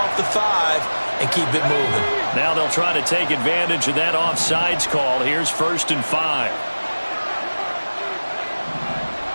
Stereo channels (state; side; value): inverted; both; correlation -1.00